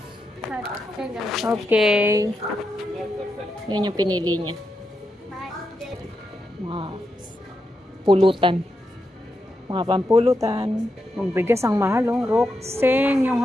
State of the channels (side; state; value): both; normal; correlation 0.85